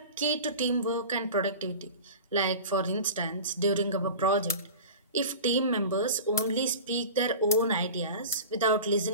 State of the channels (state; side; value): inverted; both; correlation -0.35